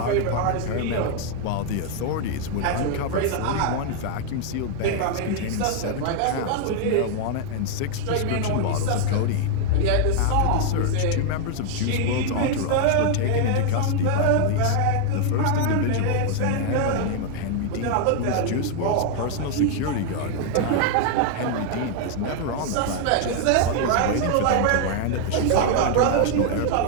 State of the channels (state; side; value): different; both; correlation 0.00